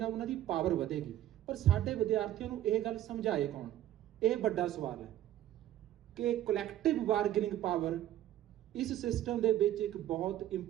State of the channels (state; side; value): quieter; left; 12.6 dB